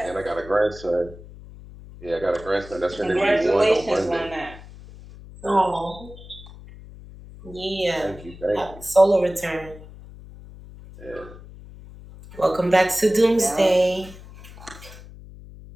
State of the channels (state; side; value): noise; left; hum, 17 dB below the sound